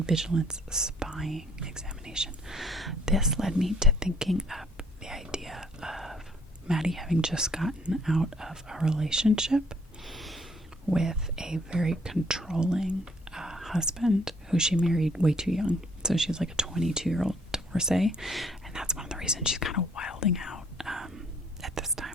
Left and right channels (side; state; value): both; normal; correlation 0.62